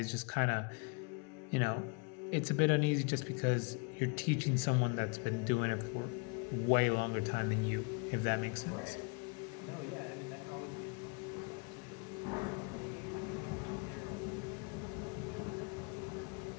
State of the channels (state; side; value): quieter; right; 33.7 dB